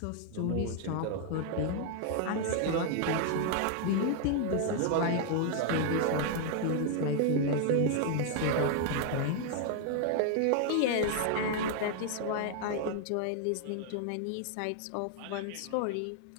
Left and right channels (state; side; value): different; both; correlation 0.00